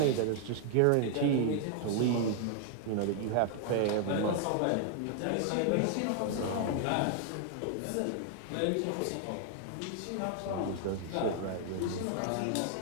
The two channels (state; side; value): different; both; correlation 0.00